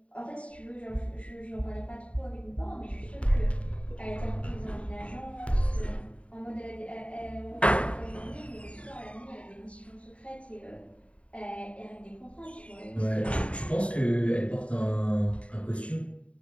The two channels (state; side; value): late; right; 0.063 ms